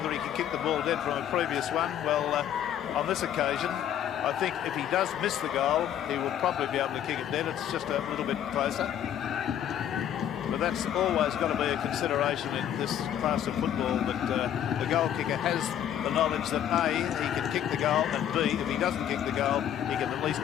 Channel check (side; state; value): right; quieter; 10.2 dB